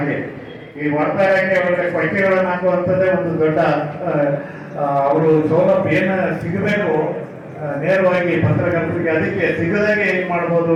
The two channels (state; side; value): identical; both; correlation 1.00